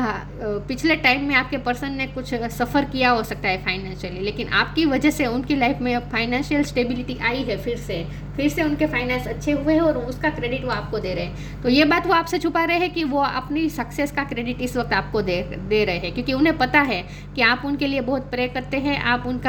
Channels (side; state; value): both; identical; correlation 1.00